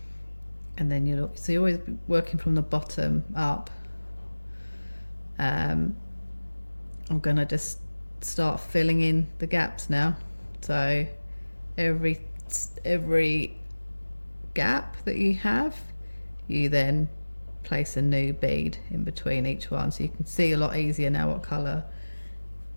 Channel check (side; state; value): both; inverted; correlation -1.00